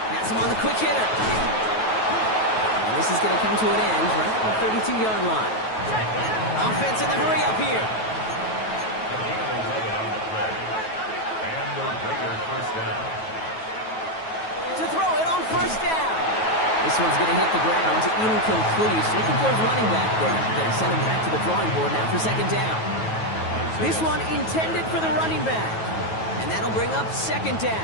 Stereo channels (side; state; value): right; late; 9.2 ms